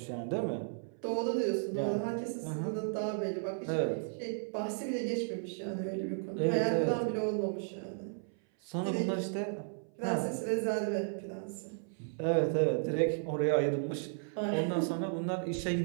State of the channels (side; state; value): left; silent; 55 dB below the other